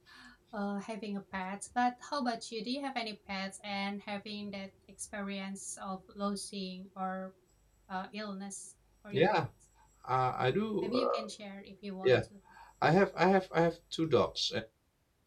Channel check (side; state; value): both; identical; correlation 1.00